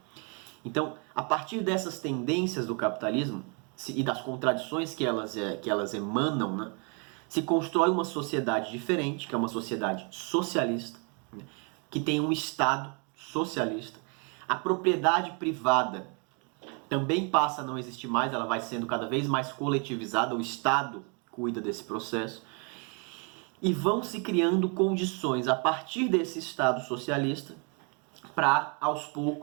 Então, a partir dessas tendências do capitalismo e das contradições que elas emanam, né, se constrói uma sociedade diferente, que é uma sociedade socialista, né, que tem um Estado socialista. A propriedade privada também passa a não existir mais, ela vai sendo cada vez mais coletivizada, o Estado cuida desse processo. E vão se criando condições a partir desse Estado socialista para, aos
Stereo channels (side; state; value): left; quieter; 36.3 dB